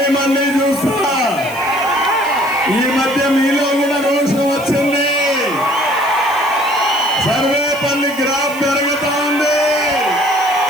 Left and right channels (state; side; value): noise; left; hiss, 17 dB below the sound